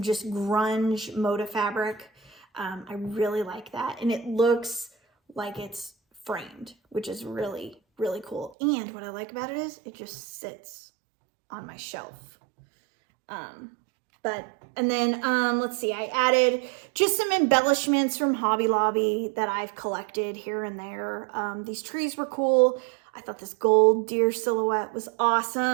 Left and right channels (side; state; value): left; drops out; at 8.5 s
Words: just grunge Moda fabric. I really like that. And it looks like it's framed, which is really, really cool. And what I like about it is it just sits on my shelf. And then let's see, I added just some embellishments from Hobby Lobby that I've collected here and there. These trees were cool. I thought this gold deer silhouette was